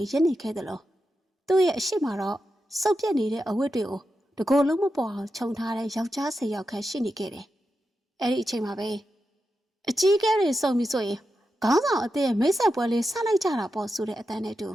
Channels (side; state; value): both; normal; correlation 0.88